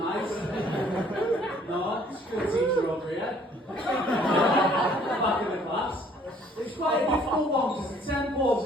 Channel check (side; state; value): both; normal; correlation 0.59